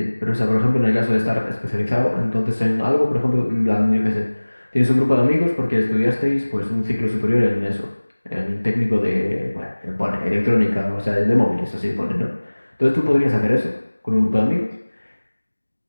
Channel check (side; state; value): both; inverted; correlation -1.00